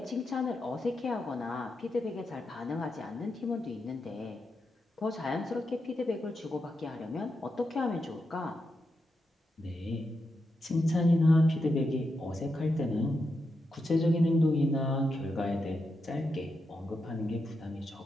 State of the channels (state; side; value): normal; both; correlation 0.86